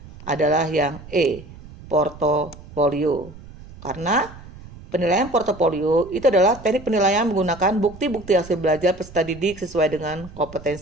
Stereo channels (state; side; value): noise; right; rumble, 18 dB below the sound